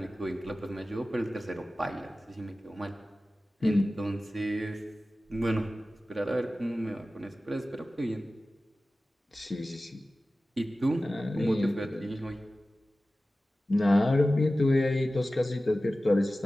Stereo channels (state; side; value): normal; both; correlation 0.95